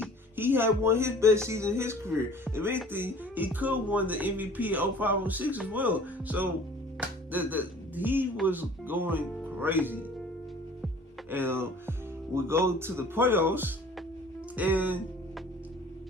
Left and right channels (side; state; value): both; normal; correlation 0.48